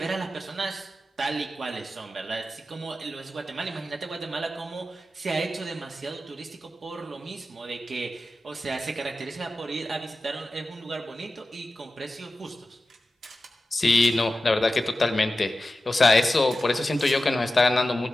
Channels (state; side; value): normal; both; correlation 0.94